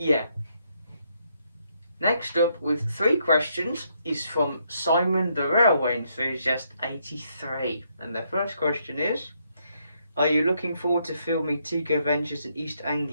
Yeah. Next up with 3 questions is from Simon the Railway Enthusiast 83, and the first question is, are you looking forward to filming Tico Ventures in East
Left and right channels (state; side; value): inverted; both; correlation -0.74